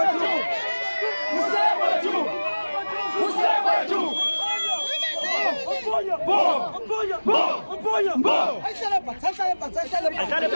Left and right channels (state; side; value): inverted; both; correlation -1.00